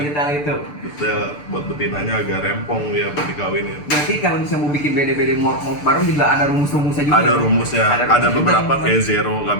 itu. Detail, buat betinanya agak rempong ya buat dikawinin. Berarti kalau misalnya mau bikin bede-bede mort baru juga ada rumus-rumusnya juga. Ada ya? rumusnya, Ada ada rumus beberapa juga, kayak zero nggak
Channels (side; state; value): right; late; 6.8 ms